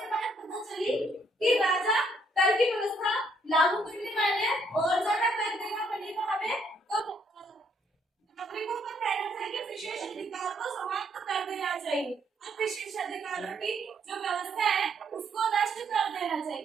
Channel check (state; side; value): normal; both; correlation 0.70